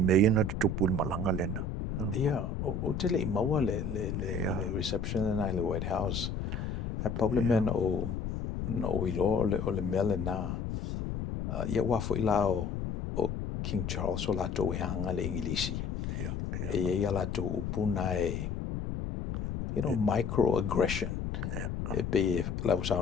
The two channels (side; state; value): left; noise; rumble, 3 dB below the sound